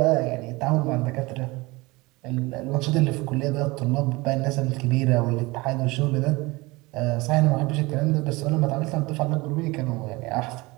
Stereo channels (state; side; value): quieter; left; 23.0 dB